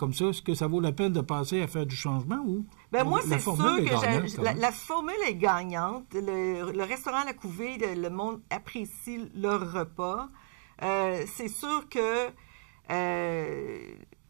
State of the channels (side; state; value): left; silent; 55 dB below the other